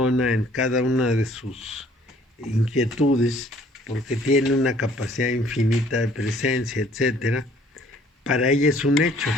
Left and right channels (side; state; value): both; normal; correlation 0.58